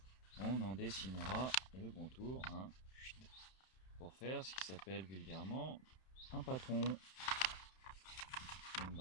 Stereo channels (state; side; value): late; right; 31 ms